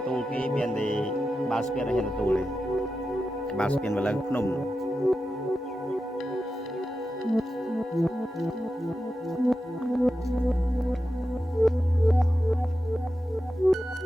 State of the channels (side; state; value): both; normal; correlation 0.91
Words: tu cái miền thì ba spiên hiện tu này ba spiên và lần phun